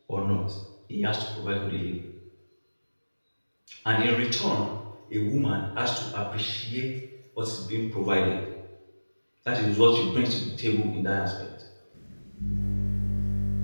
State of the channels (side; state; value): both; inverted; correlation -1.00